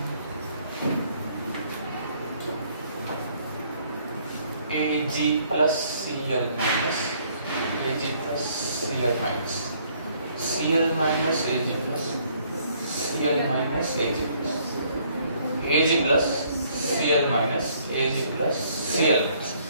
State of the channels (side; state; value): both; inverted; correlation -0.64